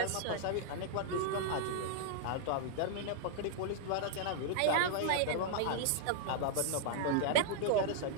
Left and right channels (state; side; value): different; both; correlation -0.01